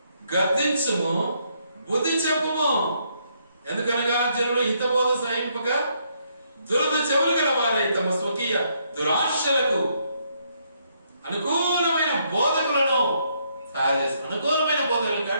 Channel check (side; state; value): both; inverted; correlation -0.73